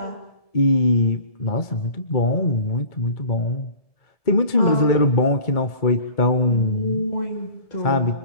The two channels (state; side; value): late; right; 1.7 ms